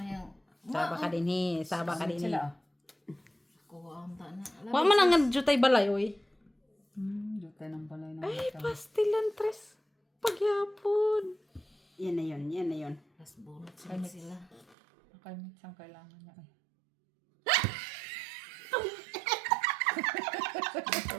yung... Saba ka din Saba ka din Sila. Kuha ang ta na. Wa man ang jutay balay, oy. Jutay ng balay ng Ay, mata. pastilan tres. Pagyapon. Yan na yun, yan na yun. Tapos bunot sila. Nakamit siyang kailangan niya. Ay.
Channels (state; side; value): drops out; left; at 14.8 s